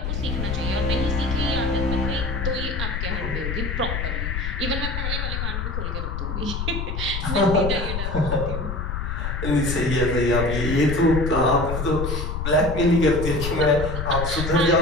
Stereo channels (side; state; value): left; noise; rumble, 3 dB below the sound